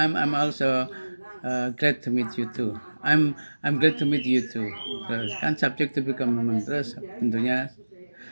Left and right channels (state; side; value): inverted; both; correlation -1.00